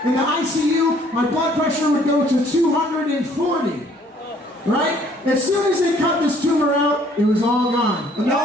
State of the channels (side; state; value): both; normal; correlation 0.61